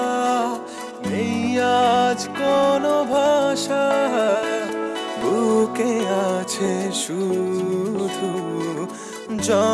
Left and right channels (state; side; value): identical; both; correlation 1.00